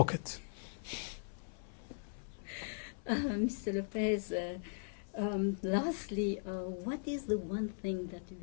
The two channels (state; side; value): silent; right; 52 dB below the other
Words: Mr. Lopes, lastly, what is the one thing that you